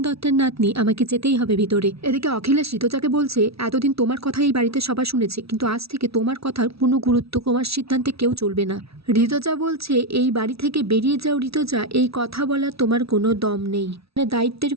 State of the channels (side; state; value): left; late; 0.76 ms